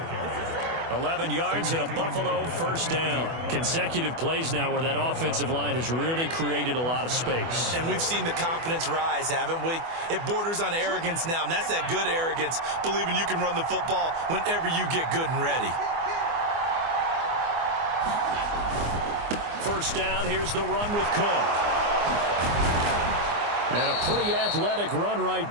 11 yards and a Buffalo first down. Consecutive plays now where that offensive line has really created a lot of space. And we've seen the confidence rise, haven't we? It borders on arrogance now, and that's that good arrogance, believing you can run the football whenever you get good and ready. First down, here's the run with Cook. And a pretty athletic run right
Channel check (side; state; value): left; late; 24 ms